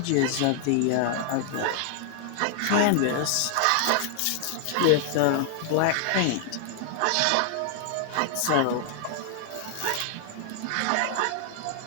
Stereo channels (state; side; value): different; both; correlation 0.00